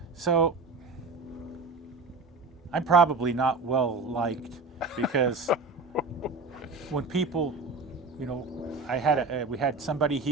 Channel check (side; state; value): left; quieter; 3.7 dB